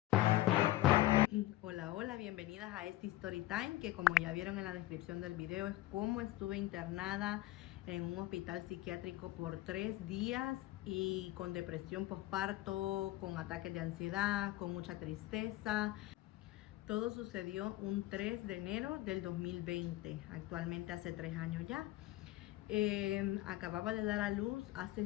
Hola, hola, bienvenidas a este Story Time, que como ya vieron en la descripción del video es cómo estuve internada en un hospital psiquiátrico por 3 días y con depresión postparto, con ataques de ansiedad, con mucha tristeza. Todo sucedió un 3 de enero del 2020, actualmente hace 3 años ya. Acababa de dar a luz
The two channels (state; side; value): quieter; right; 16.3 dB